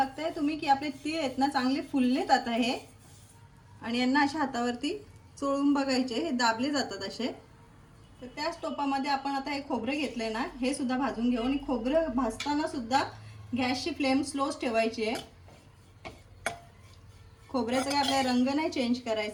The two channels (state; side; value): identical; both; correlation 1.00